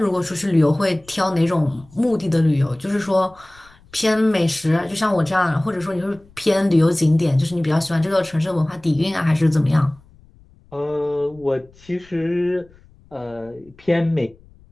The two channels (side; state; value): left; noise; rumble, 27 dB below the sound